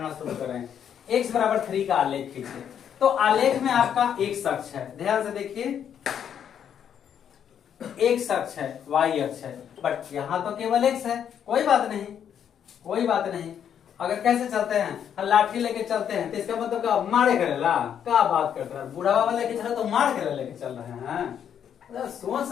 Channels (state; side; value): quieter; right; 8.8 dB